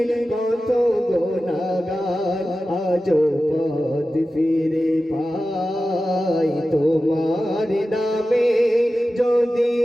কত গুনাহগার আজো পথ ফিরে পাই। তোমার নামে যদি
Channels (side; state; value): both; normal; correlation 0.94